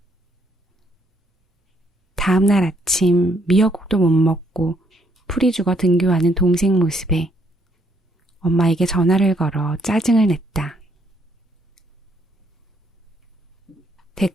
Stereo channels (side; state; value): both; normal; correlation 0.70